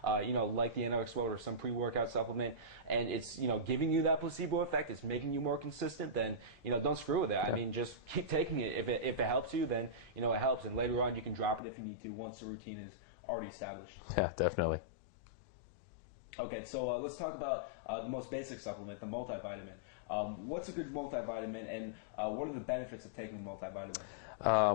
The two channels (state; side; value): drops out; right; at 11.6 s